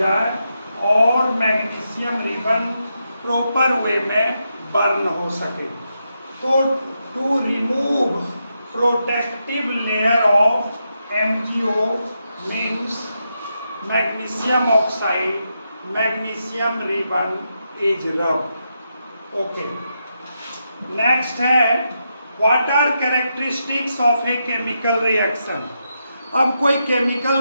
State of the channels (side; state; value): both; inverted; correlation -0.84